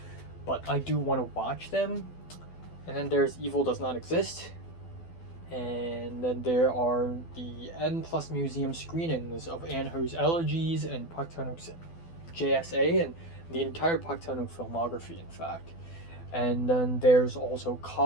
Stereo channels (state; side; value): late; right; 12 ms